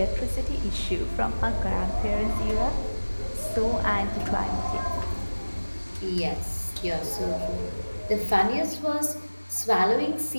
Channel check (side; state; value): both; inverted; correlation -1.00